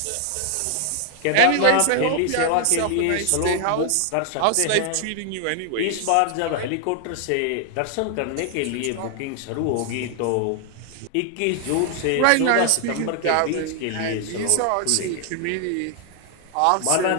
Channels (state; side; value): different; both; correlation 0.00